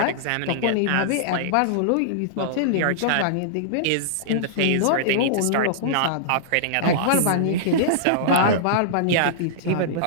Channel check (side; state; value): both; different; correlation -0.02